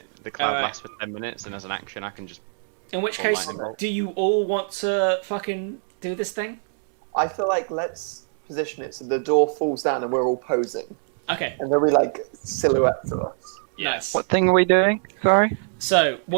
the cloud Alright. lasts for 10 minutes, and as an action, I can just. In which Or case, lightning bolt. do you all want to fucking do this thing? I feel like let's position it so the door falls down and we're all posing. Okay, And then we like silhouette to us. nice. What thing are we doing? Sorry. So,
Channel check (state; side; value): silent; left; digital silence